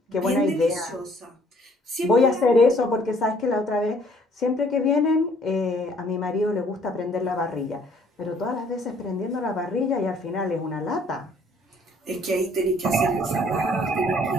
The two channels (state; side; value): normal; both; correlation 0.61